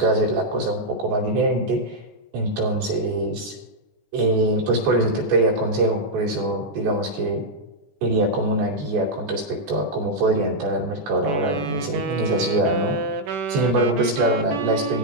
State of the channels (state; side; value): late; left; 14 ms